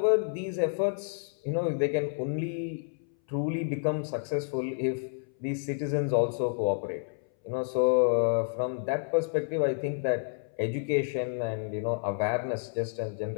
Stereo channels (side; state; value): right; silent; 58 dB below the other